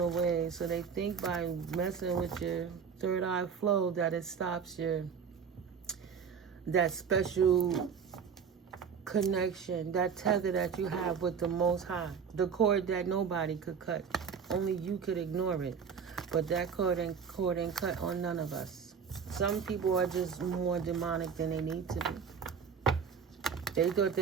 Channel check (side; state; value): left; quieter; 6.7 dB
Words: So they think by messing with your third eye flow that it stops that special connection, that tether that you have with the Most High, the cord that nobody could cut. Only you could ignore it. But that cord ain't cut on none of us. Some people are just more demonic than they need to be. They thought